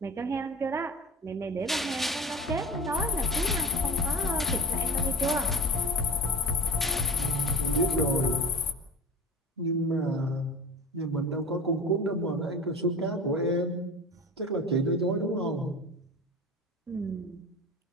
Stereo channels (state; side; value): normal; both; correlation 0.35